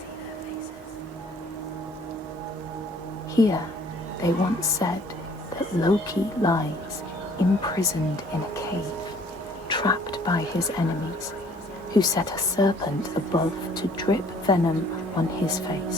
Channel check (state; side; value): normal; both; correlation 0.57